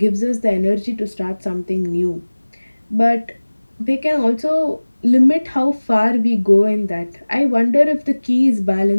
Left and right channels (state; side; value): inverted; both; correlation -1.00